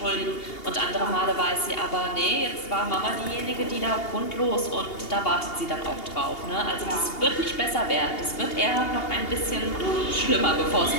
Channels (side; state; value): right; late; 2.8 ms